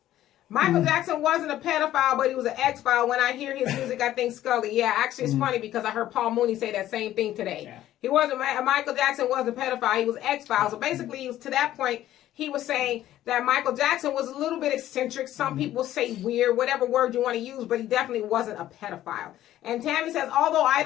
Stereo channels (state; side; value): quieter; right; 13.3 dB